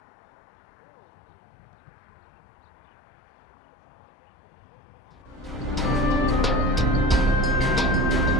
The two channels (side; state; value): both; normal; correlation 0.34